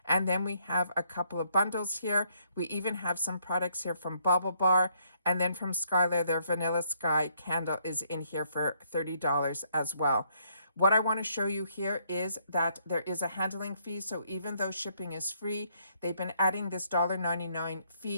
And then we have a couple of bundles here. We even have some products here from Bubble Bar, and then from Skylar, their Vanilla Sky candle is in here for $30 as well. What I want to show you here is that there is a handling fee. So even though shipping is free, they've been adding this $1.99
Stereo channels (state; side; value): inverted; both; correlation -0.70